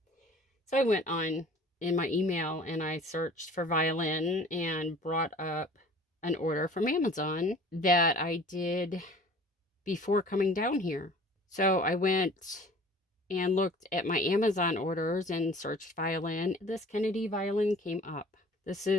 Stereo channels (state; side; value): normal; both; correlation 0.47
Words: So I went on in my email and I searched for violin and brought up an order from Amazon that I did before coming down here. So I went and looked at my Amazon orders and searched violin. This Kennedy violin came up. This